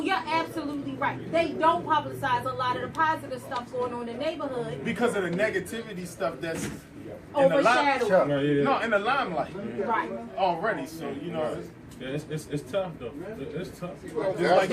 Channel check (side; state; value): both; identical; correlation 1.00